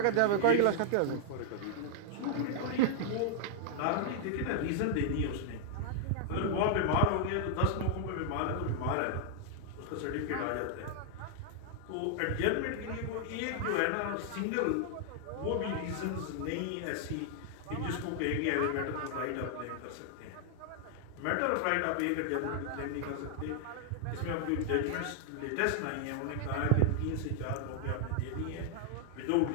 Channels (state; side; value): different; both; correlation -0.01